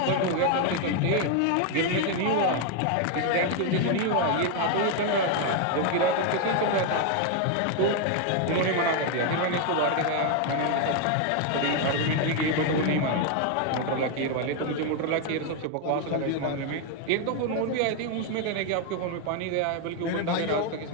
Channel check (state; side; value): different; both; correlation 0.01